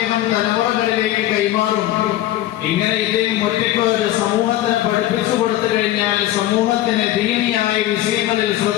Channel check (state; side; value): quieter; right; 14.0 dB